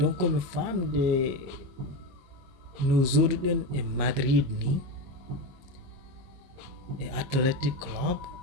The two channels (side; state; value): left; late; 22 ms